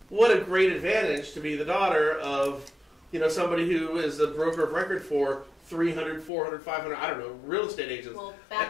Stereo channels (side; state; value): right; drops out; at 6.3 s